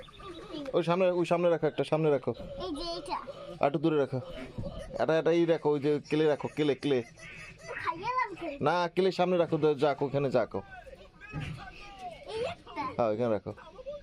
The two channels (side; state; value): both; identical; correlation 1.00